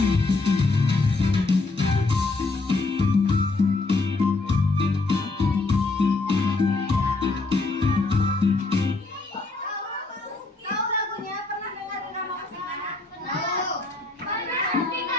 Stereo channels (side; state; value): right; quieter; 3.4 dB